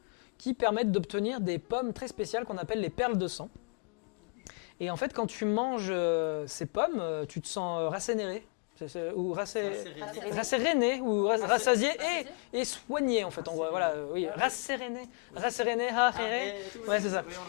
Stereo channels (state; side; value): quieter; right; 39.0 dB